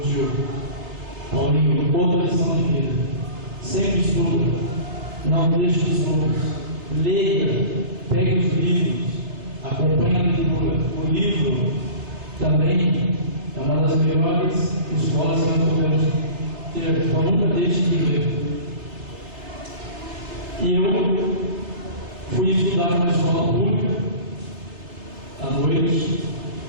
tio Paulinho, outra lição de vida: sempre estuda, não deixe os estudos, leia, pegue os livros, acompanhe a leitura. O livro também é uma das melhores escolas que nós podemos ter, então nunca deixe de ler. E eu fui estudar numa escola pública à noite,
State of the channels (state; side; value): late; left; 3.4 ms